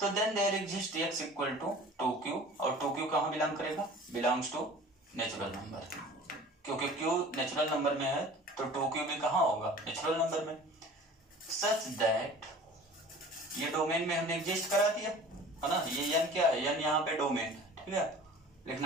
then there exist x equal to 2q, और 2q कहाँ बिलोंग करेगा, बिलोंग्स टू नेचुरल नंबर, क्योंकि q नेचुरल नंबर में है तो 2q भी कहाँ होगा, नेचुरल नंबर में। सच दैट, ये डोमेन में हमने एग्जिस्ट करा दिया है ना, ये n क्या है, n यहाँ पे डोमेन, ठीक है,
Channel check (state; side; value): normal; both; correlation 0.44